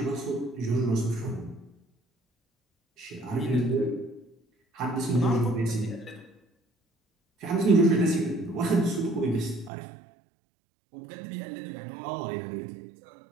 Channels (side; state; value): left; drops out; at 9.7 s